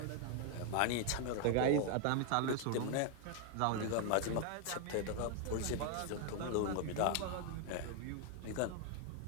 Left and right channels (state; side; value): different; both; correlation 0.00